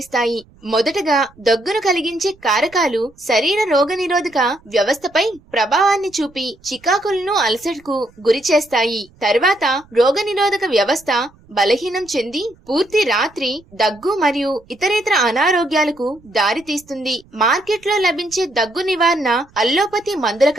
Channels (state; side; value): noise; right; rumble, 28 dB below the sound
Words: మొదటగా దగ్గును కలిగించే కారకాలు శరీర రోగనిరోధక వ్యవస్థపై ప్రభావాన్ని చూపి చికాకులను అలసటకు గురి చేస్తాయి. తర్వాత రోగనిరోధక వ్యవస్థ బలహీనం చెంది పూర్తి రాత్రి దగ్గు మరియు ఇతరేతర అనారోగ్యాలకు దారితీస్తుంది. మార్కెట్లో లభించే దగ్గు నివారణ అల్లోపతి మందుల